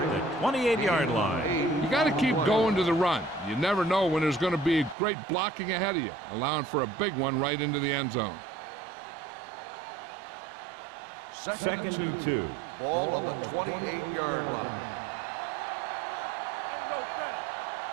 the 28-yard line. You got to keep going to the run. You never know when there's going to be great blocking ahead of you, allowing for a big one right into the end zone. 2nd and 2. Ball on the 28-yard line.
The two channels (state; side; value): drops out; left; at 5.0 s